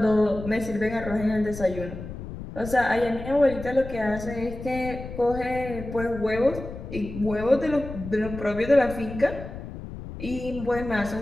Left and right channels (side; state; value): left; noise; rumble, 10 dB below the sound